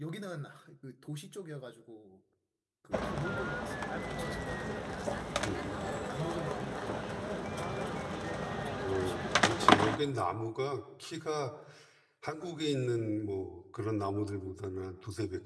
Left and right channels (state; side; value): identical; both; correlation 1.00